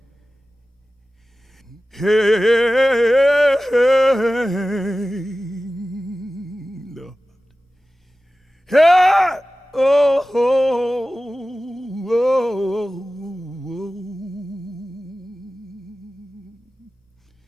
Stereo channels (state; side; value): normal; both; correlation 0.96